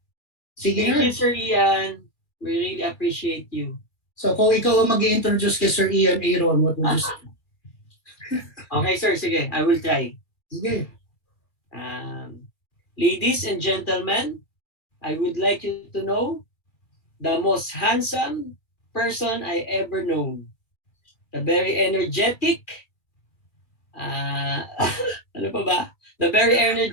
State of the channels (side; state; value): right; late; 2.3 ms